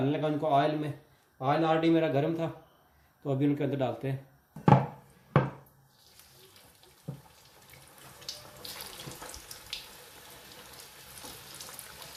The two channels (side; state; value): both; identical; correlation 1.00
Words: लगा उनको ऑयल में। ऑयल ऑलरेडी मेरा गर्म था, तो अभी उनके अंदर डालते हैं।